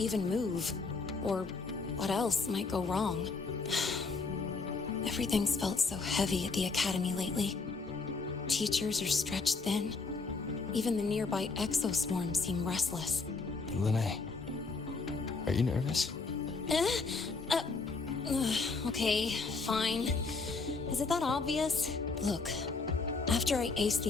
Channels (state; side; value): quieter; right; 4.2 dB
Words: move, or what else might go wrong. Everything's felt so heavy at the Academy lately. Teachers are stretched thin. Even the nearby exoswarms seem restless. Lene, are you nervous? Okay, fine. Is it that obvious? Look, after I aced